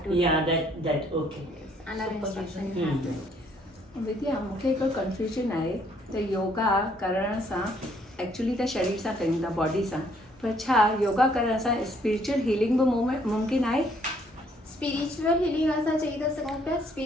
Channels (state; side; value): normal; both; correlation 0.66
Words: to. या that okay Under instruction you have to. विद्या मूंखे हिकु कंफ्यूजन आहे त योगा करण सां एक्चुअली त शरीर सां कयूं था बॉडी सां पर छा योगा करण सां स्पिरिचुअल हीलिंग बि मुमकिन आहे स्पिरिचुअल हीलिंग असां चई था सघूं पिया